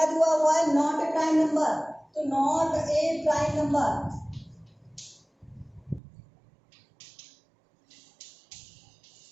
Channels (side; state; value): left; drops out; at 6.0 s